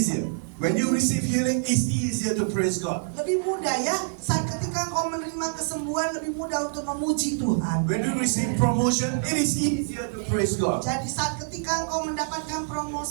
When you receive healing, it's easier to praise God. Lebih mudah ya, saat ketika engkau menerima kesembuhan lebih mudah untuk memuji Tuhan. When you receive promotion, it is easier to praise God. Jadi saat ketika engkau mendapatkan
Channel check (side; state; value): left; silent; digital silence